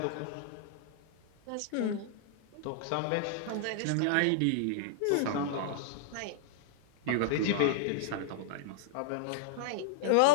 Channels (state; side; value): different; both; correlation -0.01